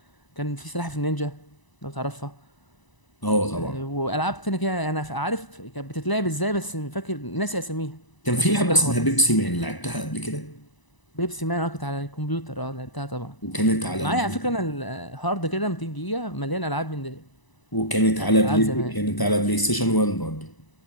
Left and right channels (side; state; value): right; late; 1.0 ms